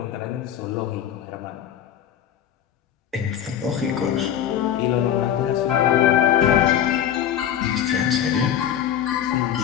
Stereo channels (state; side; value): quieter; right; 10.0 dB